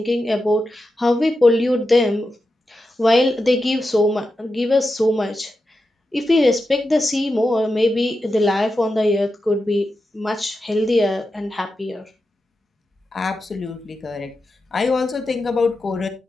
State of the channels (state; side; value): normal; both; correlation 0.90